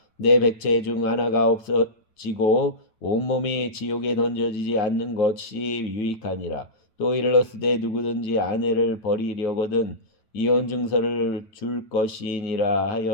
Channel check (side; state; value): right; late; 9.1 ms